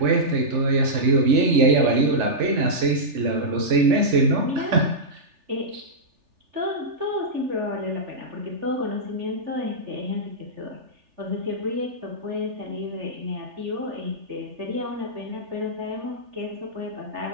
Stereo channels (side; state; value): left; late; 3.4 ms